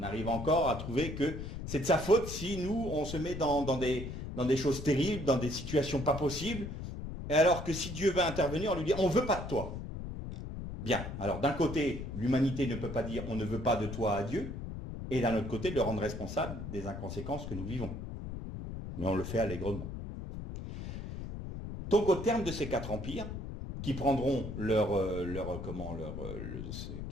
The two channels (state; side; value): noise; left; rumble, 7 dB below the sound